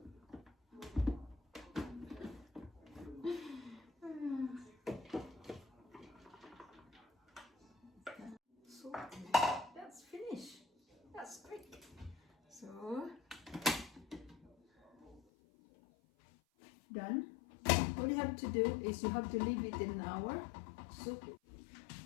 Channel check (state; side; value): drops out; right; at 15.2 s